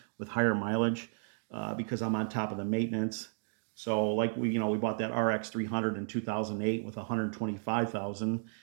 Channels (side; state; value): left; silent; digital silence